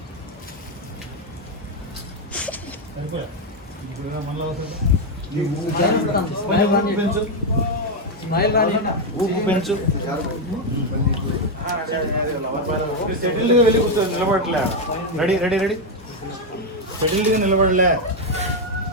సరిపోయా. ఇప్పుడు మనలో పెంచు. స్మైల్ రాని ఊపు పెంచు. సెటిల్గా వెళ్ళి కూర్చో. నిలబడలే. Ready ready ready. సెటిల్గా నిలబడలే.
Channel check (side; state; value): both; normal; correlation 0.04